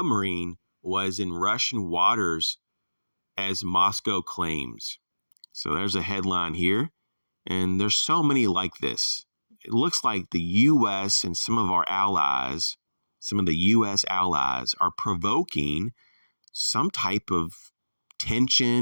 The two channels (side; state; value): both; inverted; correlation -1.00